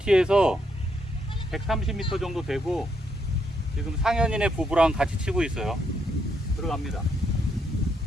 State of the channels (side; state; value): both; normal; correlation 0.76